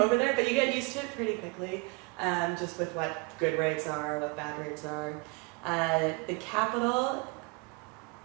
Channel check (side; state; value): left; quieter; 29.8 dB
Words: over there, but you get used to it pretty quickly. Just with what good rates are, what bad rates are. The capital,